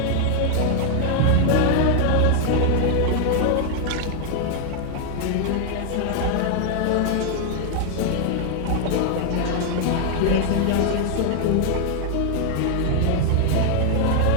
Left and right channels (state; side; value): different; both; correlation 0.00